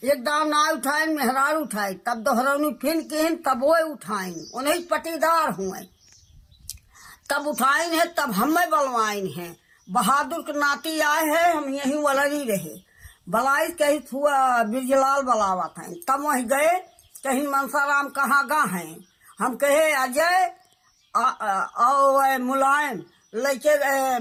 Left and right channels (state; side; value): identical; both; correlation 1.00